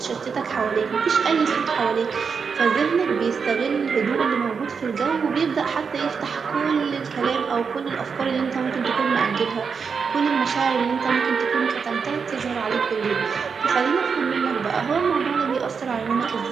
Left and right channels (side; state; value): left; quieter; 5.8 dB